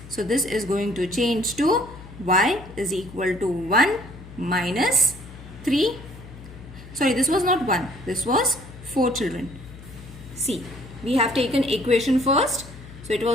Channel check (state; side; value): noise; left; hum, 16 dB below the sound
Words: So, this is going to change to y is equal to 1 minus 3. Sorry, this was not 1. This was 4, children. See, we have taken equation first. So, it